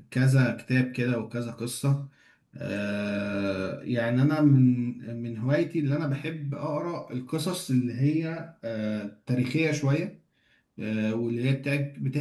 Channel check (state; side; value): identical; both; correlation 1.00